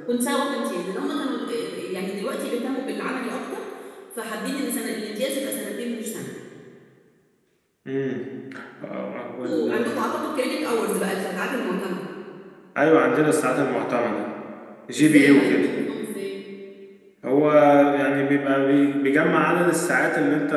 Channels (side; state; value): both; identical; correlation 1.00